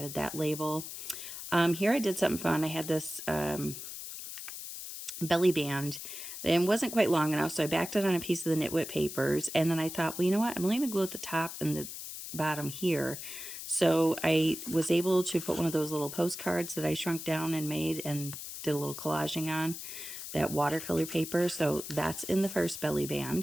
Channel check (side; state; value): left; noise; hiss, 9 dB below the sound